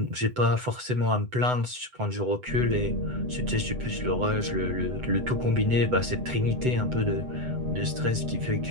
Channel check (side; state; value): left; late; 8.0 ms